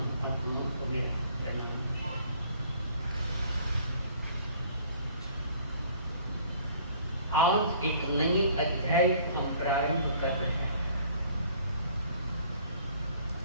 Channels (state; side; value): inverted; both; correlation -0.55